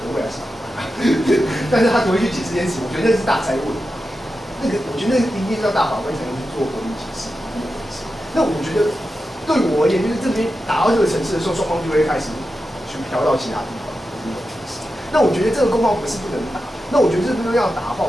各位还是法官，但是他只会去解释这件事情，我觉得那是大灾问。那个我觉得那一定要大法官才能去做合理解释。那我觉得对我而言，就是这边打到这个层次的时候，双方就会开始去飘到其他地方。那我觉得这个攻防不是不能打。那我觉得这边要打的话，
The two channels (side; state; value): both; normal; correlation 0.90